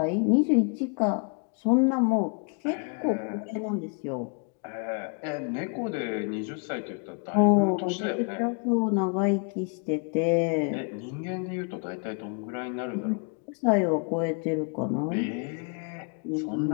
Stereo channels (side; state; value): right; quieter; 39.8 dB